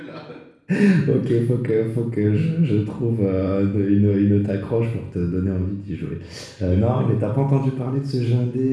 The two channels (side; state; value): both; identical; correlation 1.00